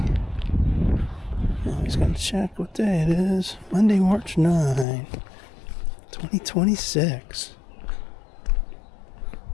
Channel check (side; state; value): right; drops out; at 4.9 s